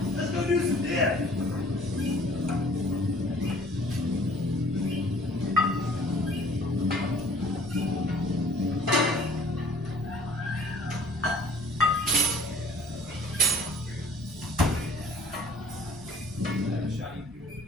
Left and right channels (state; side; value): normal; both; correlation 0.53